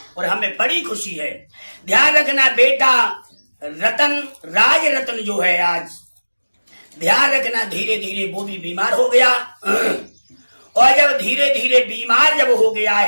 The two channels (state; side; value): inverted; both; correlation -1.00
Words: और हमें बड़ी खुशी है। ध्यान रखना बेटा रतन, राज रतन जो है आज, ध्यान रखना धीरे धीरे वो भी बीमार हो गया। और जब धीरे धीरे बीमार जब हो गया